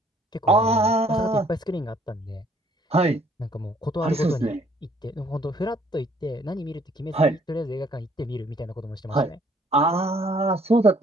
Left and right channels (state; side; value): normal; both; correlation 0.62